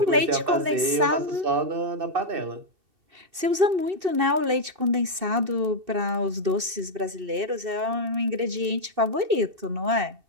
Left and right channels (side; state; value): left; late; 2.7 ms